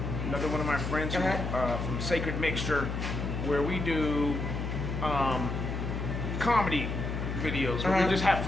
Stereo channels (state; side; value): noise; left; hum, 3 dB below the sound